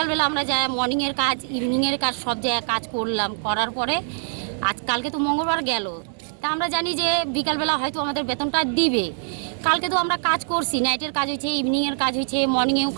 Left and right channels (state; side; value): silent; left; 60 dB below the other